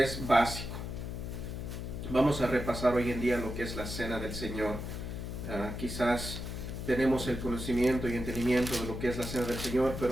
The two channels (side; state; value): left; noise; hum, 6 dB below the sound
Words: es básico. Vamos a repasar hoy en día lo que es la Cena del Señor. Quizás tenemos el conocimiento y entendimiento de lo que es la Cena del Señor,